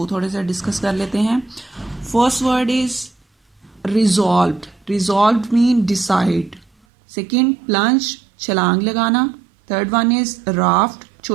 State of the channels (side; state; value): left; drops out; at 6.7 s